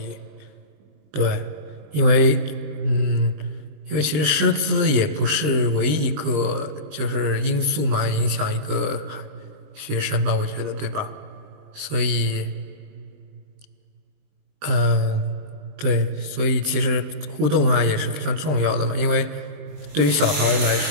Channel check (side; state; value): left; late; 20 ms